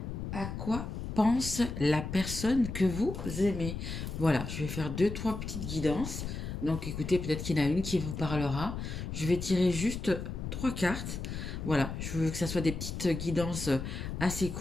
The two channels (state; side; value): noise; left; rumble, 6 dB below the sound